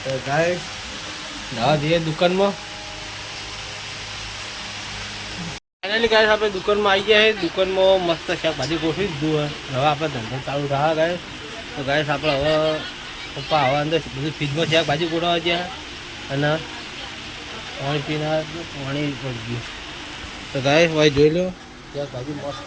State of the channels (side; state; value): both; identical; correlation 1.00